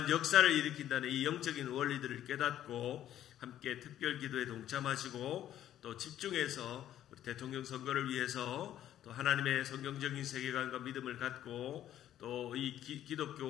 역사를 일으킨다는 이 영적인 원리들을 깨닫고 함께 특별 기도에 동참하시고 또 집중해서 우리 대통령 선거를 위해서 또 하나님의 성경적인 세계관과 믿음을 갖고 또 이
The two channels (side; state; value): right; quieter; 11.7 dB